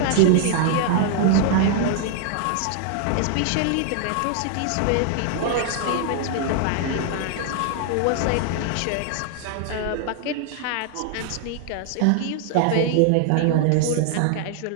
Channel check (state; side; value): different; both; correlation 0.00